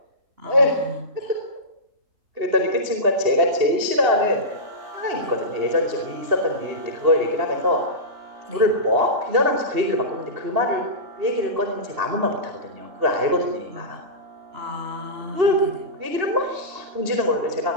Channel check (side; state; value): left; late; 2.8 ms